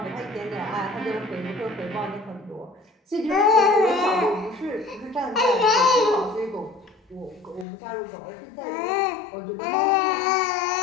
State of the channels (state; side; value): drops out; right; at 7.7 s